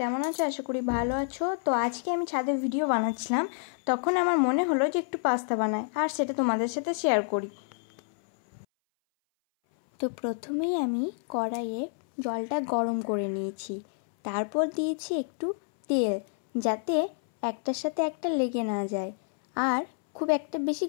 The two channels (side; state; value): right; silent; 59 dB below the other